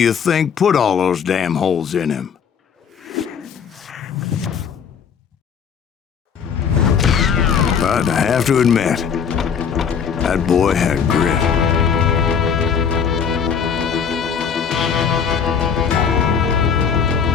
think put all those damn holes in him? But I have to admit, that boy had grit.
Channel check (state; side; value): quieter; right; 6.9 dB